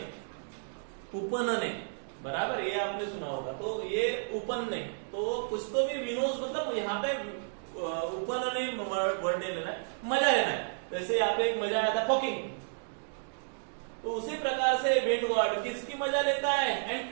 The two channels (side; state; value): left; silent; digital silence